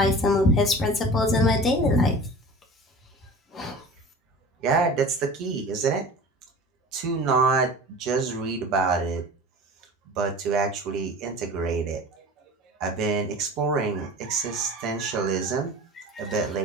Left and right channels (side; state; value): both; normal; correlation 0.38